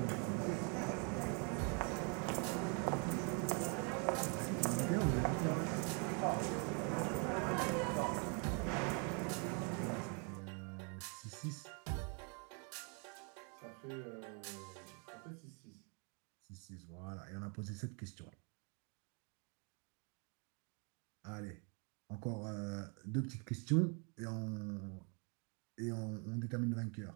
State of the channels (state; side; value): quieter; left; 36.9 dB